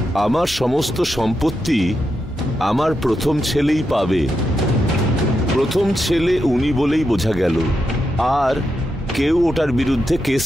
আমার সমস্ত সম্পত্তি আমার প্রথম ছেলেই পাবে। প্রথম ছেলে উনি বলেই বোঝা গেল, আর কেউ ওটার বিরুদ্ধে কেস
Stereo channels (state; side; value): normal; both; correlation 0.85